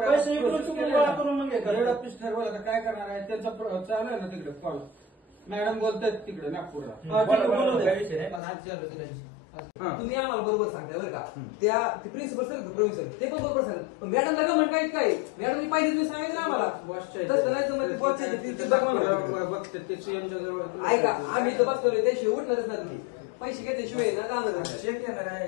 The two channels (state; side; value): drops out; right; at 8.4 s